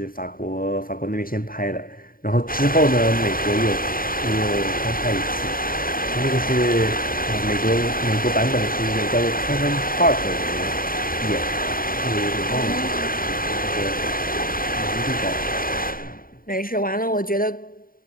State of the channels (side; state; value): right; late; 0.41 ms